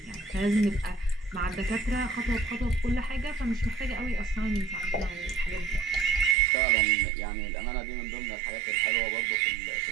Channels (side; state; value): left; drops out; at 6.4 s